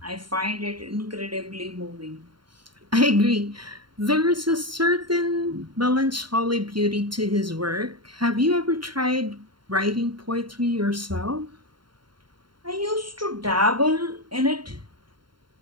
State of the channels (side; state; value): left; late; 0.72 ms